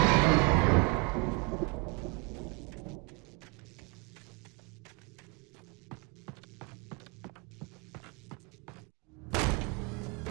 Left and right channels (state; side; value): quieter; left; 29.8 dB